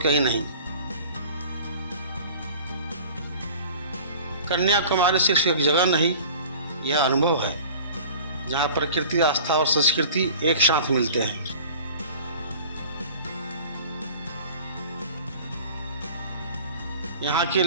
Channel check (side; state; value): both; inverted; correlation -0.43